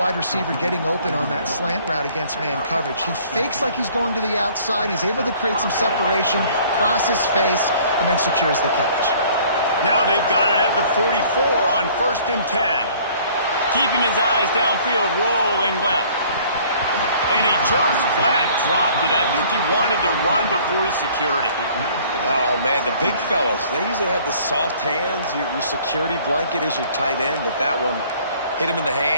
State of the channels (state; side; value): inverted; both; correlation -0.55